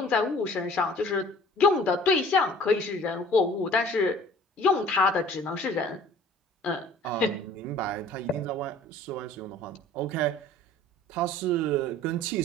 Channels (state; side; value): normal; both; correlation 0.49